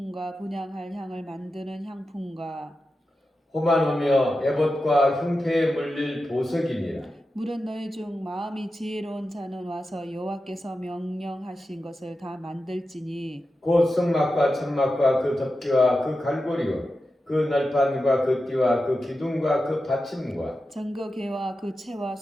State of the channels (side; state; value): both; normal; correlation 0.91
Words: 분향할 향을 만드는 향품과 호만오며 에봇과 흉패에 물릴 보석이니라. 물은 너희 중 마음이 지혜로운 자는 와서 여호와께서 명령하신 것을 다 만들지니 곧 성막과 천막과 그 덮개와 그 갈고리와 그 날판과 그 띠와 그 기둥과 그 받침과 정거개와 그 채와